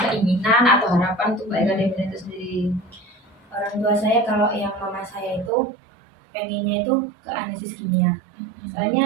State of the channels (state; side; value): drops out; left; at 5.5 s